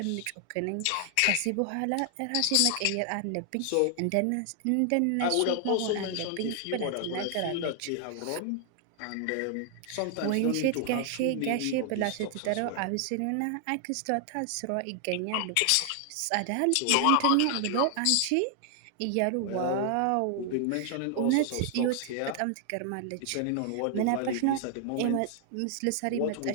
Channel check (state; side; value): different; both; correlation 0.00